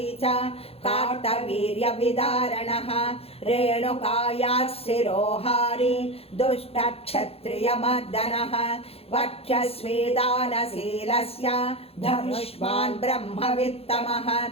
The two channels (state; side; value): late; right; 0.29 ms